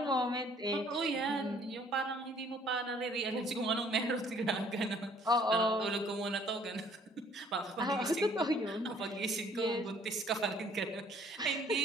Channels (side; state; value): both; normal; correlation 0.59